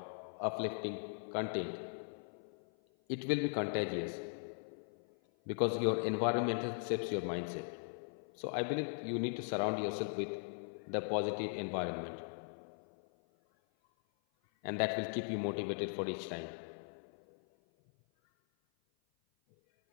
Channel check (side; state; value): right; silent; 51 dB below the other